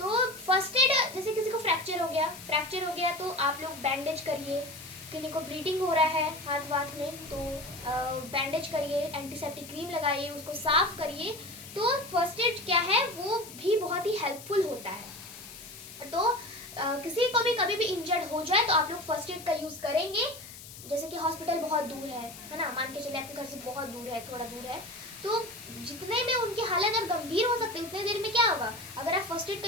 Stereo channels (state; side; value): noise; left; hiss, 15 dB below the sound